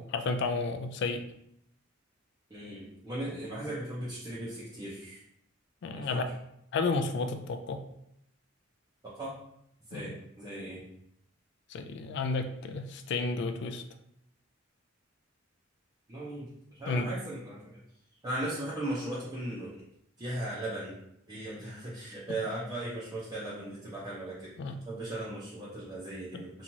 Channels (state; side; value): normal; both; correlation 0.36